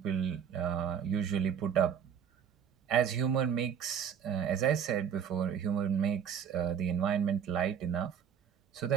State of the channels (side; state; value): left; quieter; 8.1 dB